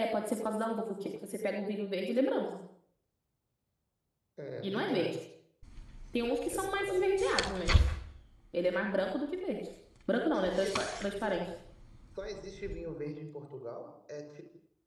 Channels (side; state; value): both; identical; correlation 1.00